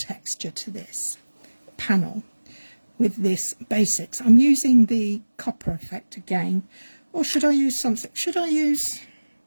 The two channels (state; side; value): inverted; both; correlation -1.00